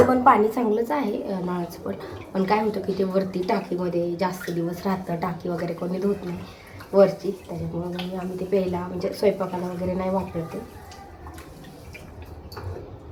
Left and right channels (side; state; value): both; identical; correlation 1.00